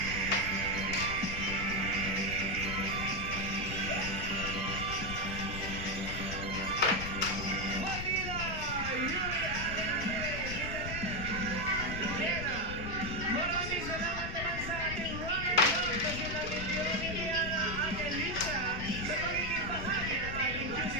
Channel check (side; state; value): left; noise; rumble, 6 dB below the sound